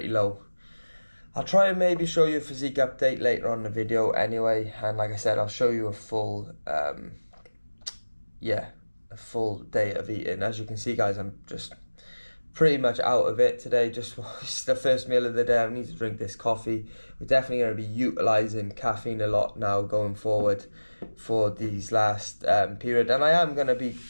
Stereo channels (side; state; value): both; inverted; correlation -1.00